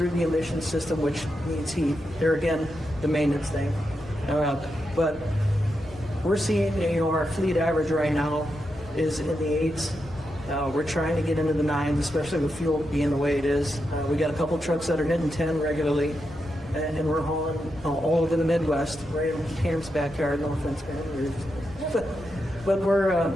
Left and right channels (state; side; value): noise; left; rumble, 18 dB below the sound